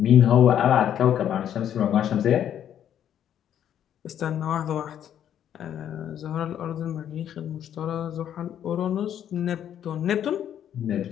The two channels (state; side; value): quieter; right; 10.0 dB